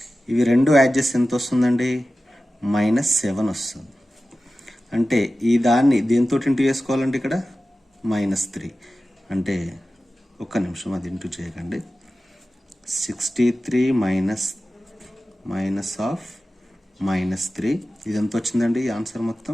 ఇవి రెండు యాడ్ చేస్తే ఎంత వస్తుందండి, -7 వస్తుంది. అంటే ఈ దాన్ని దీంతో ఇంటూ చేసుకోవాలంటే ఇక్కడ -3. అంటే ఒక్క నిమిషం, అది ఇంటూ చేయకండి. 63 మైనస్ ఆఫ్ -3, ఇది ఎంత వచ్చిందండి, ఆన్సర్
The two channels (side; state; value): both; normal; correlation 0.94